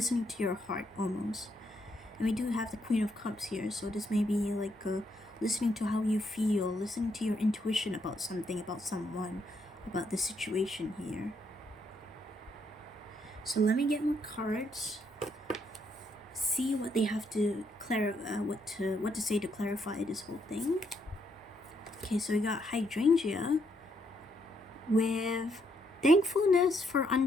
to your heart almost. And we do have the Queen of Cups here, so this may be like listening to how you feel, listening to your intuition about something, about someone, about the situation here. So let me get more cards, see what they have to what to say to clarify this whole thing. Okay, so we got hydrangea with thankfulness for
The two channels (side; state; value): both; normal; correlation 0.75